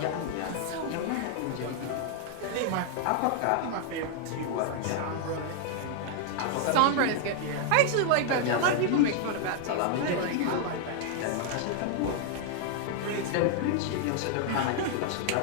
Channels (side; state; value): both; different; correlation 0.00